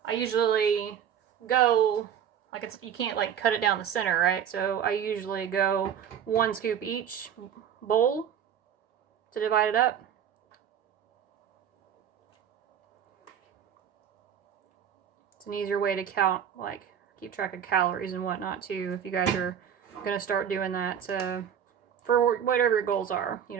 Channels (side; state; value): left; quieter; 8.8 dB